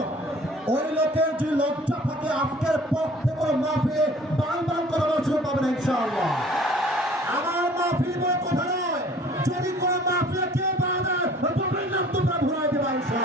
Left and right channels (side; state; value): both; normal; correlation 0.51